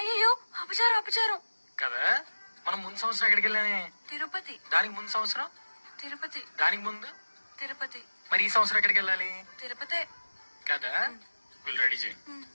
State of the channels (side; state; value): both; inverted; correlation -1.00